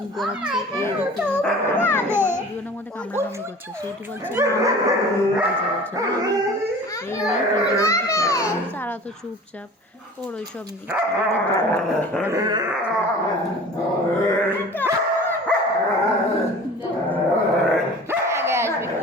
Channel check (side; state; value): both; normal; correlation 0.42